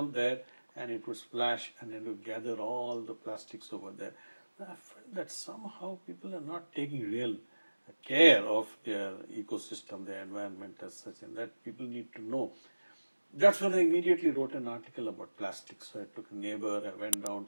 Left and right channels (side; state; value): both; inverted; correlation -1.00